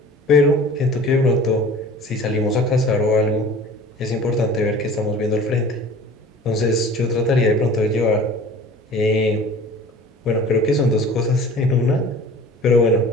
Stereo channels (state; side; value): normal; both; correlation 0.43